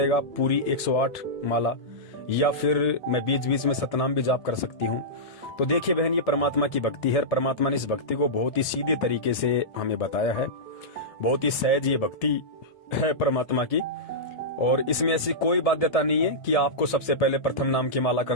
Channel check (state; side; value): late; right; 1.7 ms